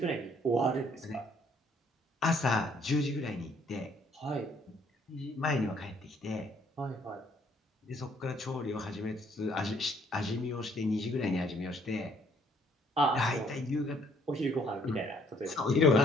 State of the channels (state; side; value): normal; both; correlation 0.64